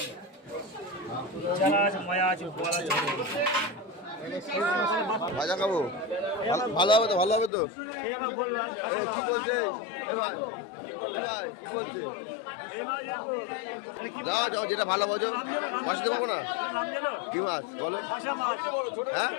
ভাজা খাবো, ভালো হবে তো? ভালো হবে তো? কি বলছে দাও যাও, যেটা ভালো বোঝো। মাছ দিতে পারবো না। কি মাছ বলো? হ্যাঁ,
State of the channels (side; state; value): right; drops out; at 7.5 s